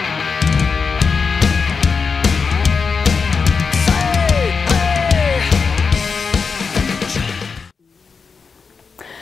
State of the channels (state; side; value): quieter; right; 5.3 dB